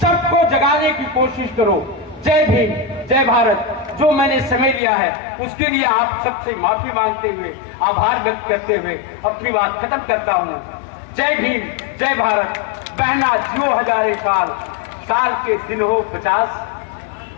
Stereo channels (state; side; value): drops out; right; at 4.8 s